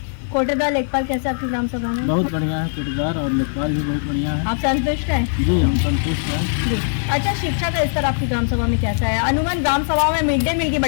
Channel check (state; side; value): silent; right; digital silence